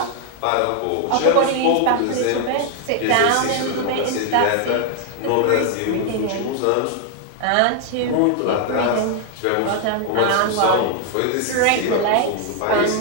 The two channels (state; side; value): different; both; correlation 0.00